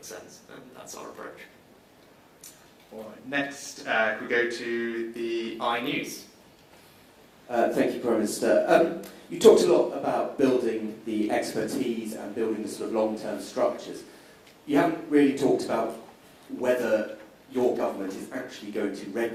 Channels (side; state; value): both; identical; correlation 1.00